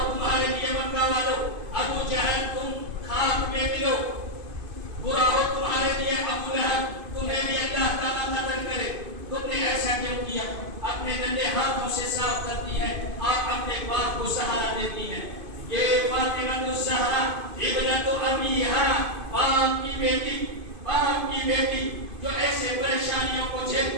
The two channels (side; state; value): left; late; 2.5 ms